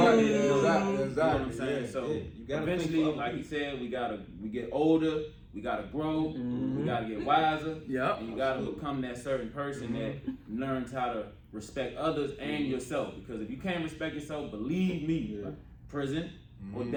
Exactly. Exactly. You know what I'm saying? So you gotta eventually, like he said, we get older. We gotta grow. We gotta get wiser. And you gotta become that certain person that learns how to respect others and yourself. Because if you can't respect yourself, believe me, prison or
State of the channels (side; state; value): both; identical; correlation 1.00